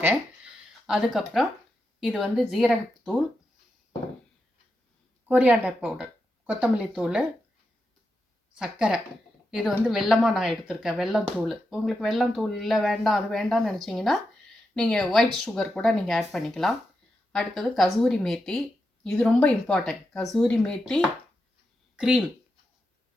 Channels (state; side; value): normal; both; correlation 0.87